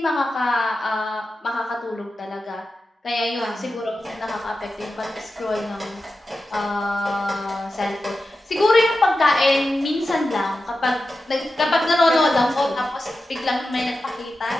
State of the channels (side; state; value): both; normal; correlation 0.92